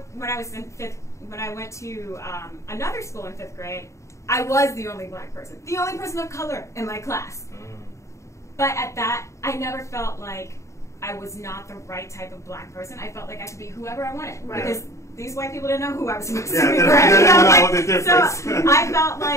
when I was when I went to another school in 5th grade, I was the only Black person, the only person of color in my class. But at that, I never felt like I was not the right type of Black person. I felt like I could be whoever I wanted because these white people didn't know who I was supposed to be. So I felt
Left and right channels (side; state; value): right; late; 0.14 ms